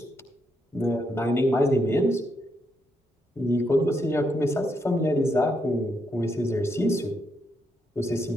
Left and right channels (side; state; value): both; normal; correlation 0.79